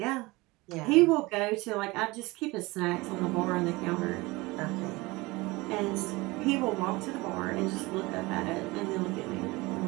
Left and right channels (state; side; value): quieter; left; 22.5 dB